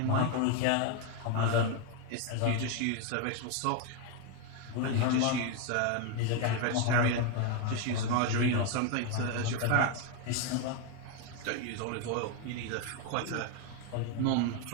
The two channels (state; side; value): different; both; correlation 0.01